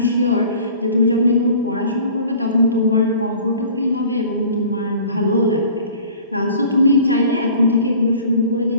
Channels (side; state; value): both; inverted; correlation -0.47